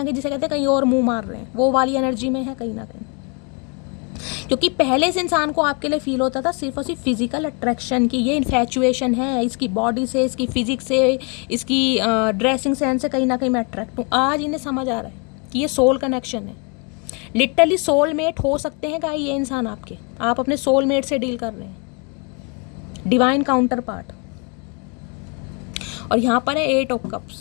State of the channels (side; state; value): right; quieter; 34.2 dB